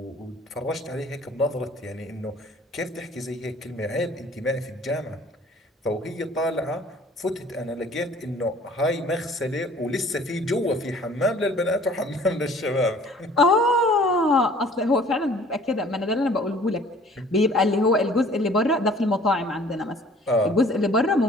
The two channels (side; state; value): both; normal; correlation 0.52